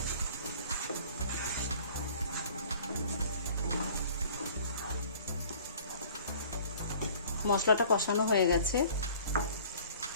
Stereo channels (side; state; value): both; inverted; correlation -0.50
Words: মশলাটা কষানো হয়ে গেছে,